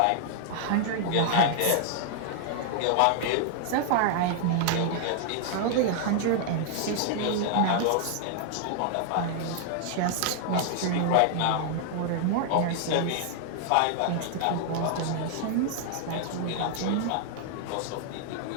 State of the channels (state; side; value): different; both; correlation -0.01